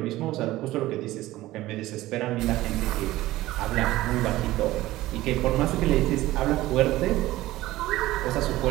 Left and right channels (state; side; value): quieter; left; 16.8 dB